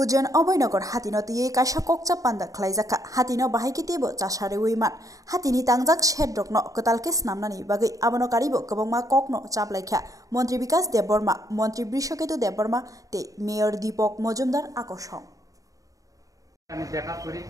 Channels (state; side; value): late; left; 0.16 ms